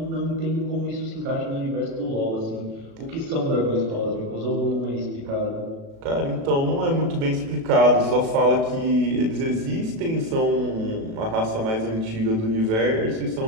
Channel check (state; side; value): late; left; 36 ms